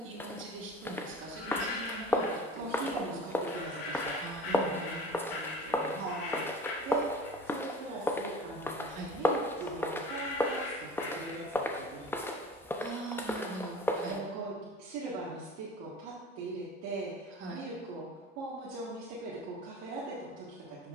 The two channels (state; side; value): normal; both; correlation 0.39